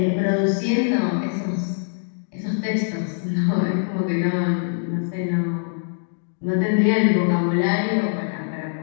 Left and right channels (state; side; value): silent; right; digital silence